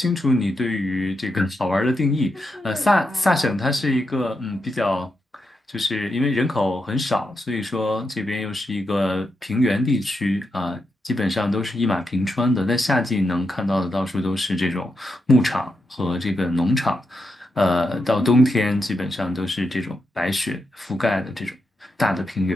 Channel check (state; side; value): normal; both; correlation 0.85